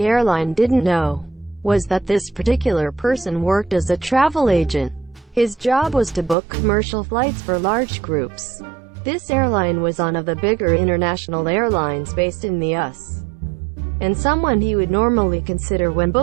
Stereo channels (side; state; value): left; drops out; at 6.4 s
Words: didn't know was that this particular person worked as a travel agent. His job was to book commercial flights for large groups. This airline was one of the bigger international airlines based in the US, and someone he would normally consider when